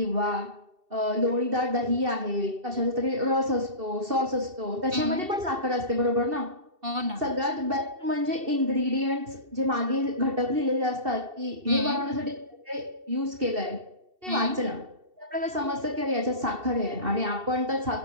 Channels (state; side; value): late; left; 2.7 ms